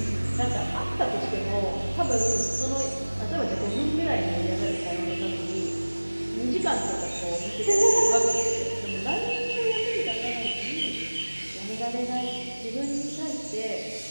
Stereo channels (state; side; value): inverted; both; correlation -1.00